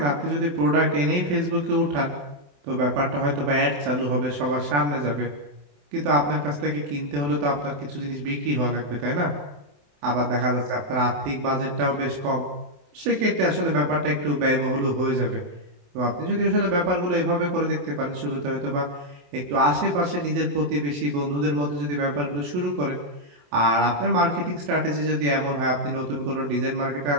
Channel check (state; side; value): late; left; 28 ms